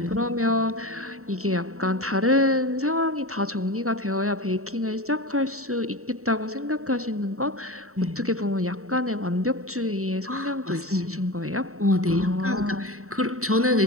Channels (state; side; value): late; left; 0.64 ms